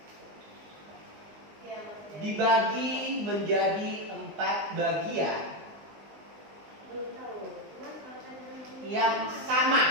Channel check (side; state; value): left; late; 19 ms